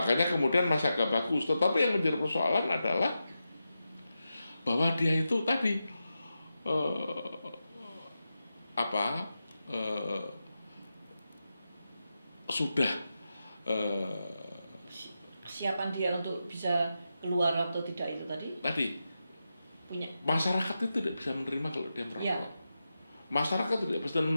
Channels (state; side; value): inverted; both; correlation -0.90